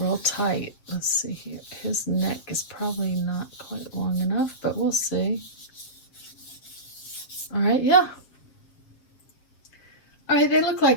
tight. Let's see here. His neck is probably not quite long enough, but we'll see. All right, yeah. All right, they look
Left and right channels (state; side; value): late; right; 7.5 ms